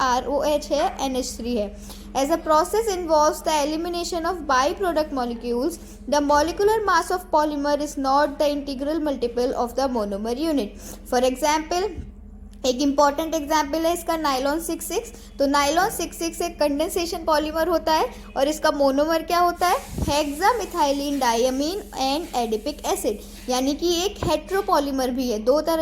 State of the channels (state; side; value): identical; both; correlation 1.00